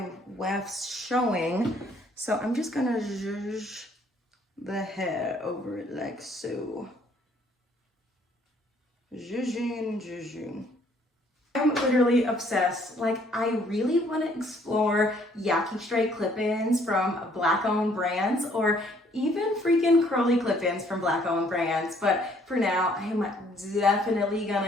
wefts showing, so I'm just gonna zhuzh the hair over it like so. Zhuzhing. I'm literally obsessed. Like, I really want to explore Yaki Straight clip-ins from Black-owned brands, or even freaking curly clip-ins from Black-owned brands. But for now, I am definitely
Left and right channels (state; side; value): normal; both; correlation 0.63